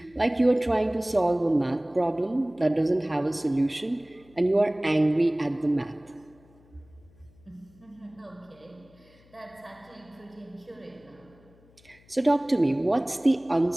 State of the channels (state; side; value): noise; left; hum, 29 dB below the sound